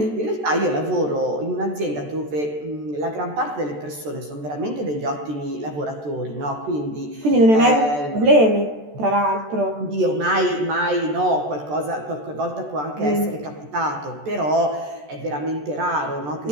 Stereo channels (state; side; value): late; left; 14 ms